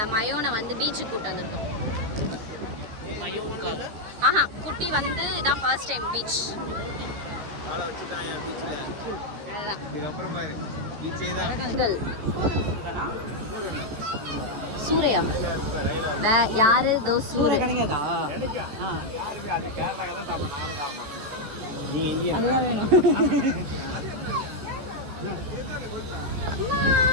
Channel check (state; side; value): late; left; 14 ms